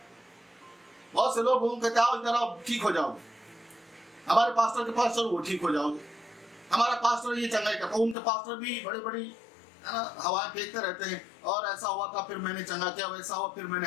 बहुत से लोग कहते हैं इधर आओ ठीक हो जाओगे, हमारे पास्टर के पास चलो वो ठीक हो जाओगे, हमारा पास्टर ये चंगाई करता। उनके पास्टर भी बड़ी बड़ी हवाएं फेंकते रहते हैं, और ऐसा हुआ था फिर मैंने चंगा किया, वैसा हुआ फिर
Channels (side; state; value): right; drops out; at 8.2 s